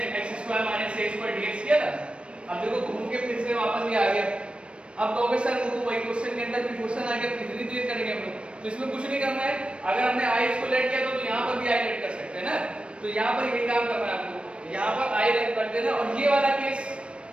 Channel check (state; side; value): late; left; 0.059 ms